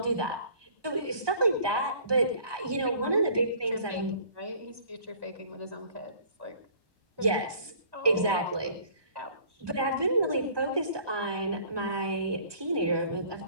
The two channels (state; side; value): late; left; 1.2 ms